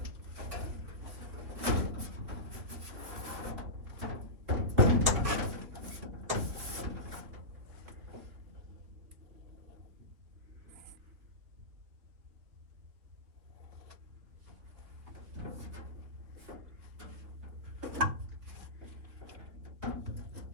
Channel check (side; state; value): left; late; 3.6 ms